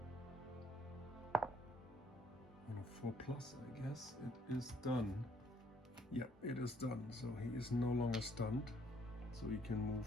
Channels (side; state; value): both; normal; correlation 0.66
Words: On a 4+, I guess it is done. Yeah, it is done. So he is no longer stunned. So he can